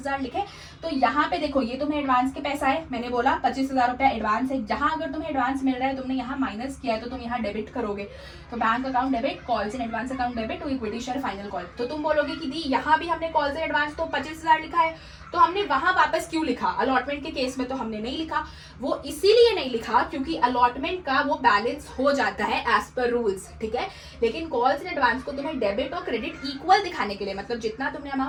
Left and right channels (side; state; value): both; identical; correlation 1.00